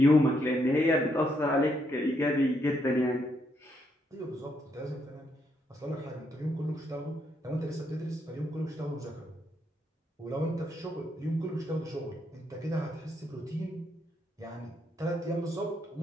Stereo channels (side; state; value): both; normal; correlation 0.76